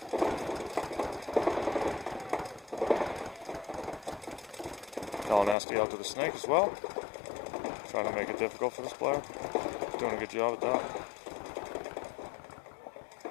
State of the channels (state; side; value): drops out; right; at 5.6 s